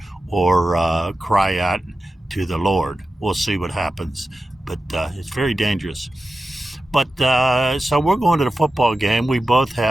or cry out to the Lord. We'll see what happens, but it's very dangerous. But so we're going to the football game. We both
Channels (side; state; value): both; normal; correlation 0.93